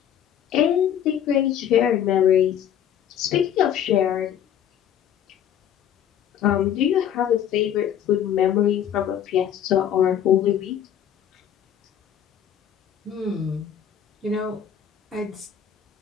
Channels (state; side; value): quieter; right; 9.6 dB